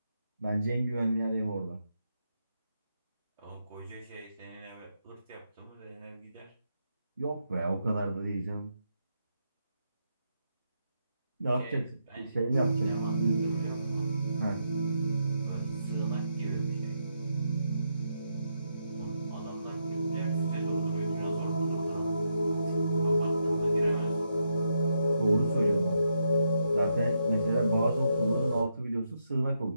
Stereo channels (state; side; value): inverted; both; correlation -0.80